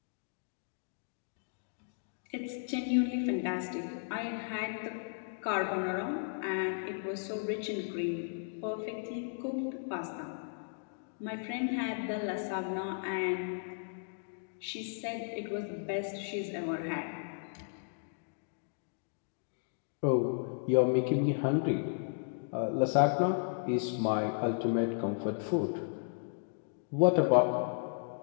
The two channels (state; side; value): silent; right; digital silence